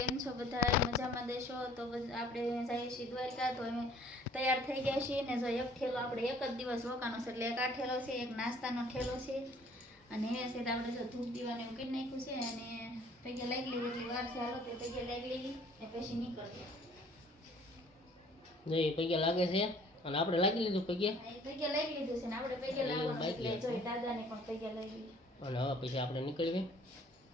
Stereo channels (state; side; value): normal; both; correlation 0.56